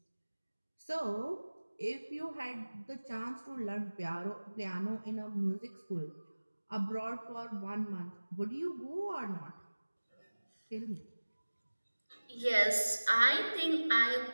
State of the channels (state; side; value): inverted; both; correlation -1.00